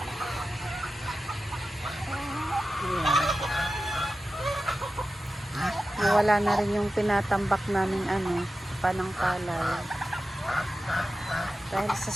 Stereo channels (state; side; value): normal; both; correlation 0.93